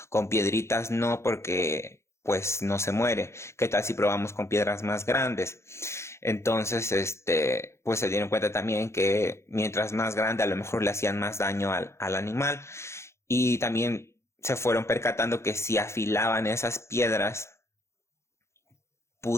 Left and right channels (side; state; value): right; late; 0.13 ms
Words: con piedritas no porque pues no se muere. ¿Qué tal si probamos con piedras más grandes? Entonces, pues se dieron cuenta también que mientras más grande a lo mejor le hacían más daño al animal y también se fueron percatando que si afilaban esas piedras